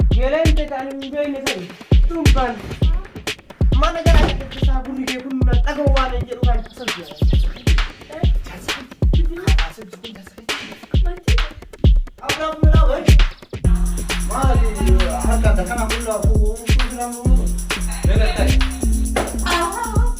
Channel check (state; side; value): identical; both; correlation 1.00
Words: Egalente kan bene sai. Tumban. Mana gara kita saburi ke kun tagawa ne je kan sabiya. Abra mula wai. Mali harka da kana kullu ko program mu. Bega tai.